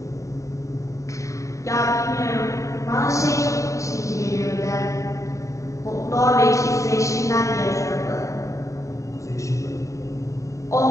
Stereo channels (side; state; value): right; late; 0.15 ms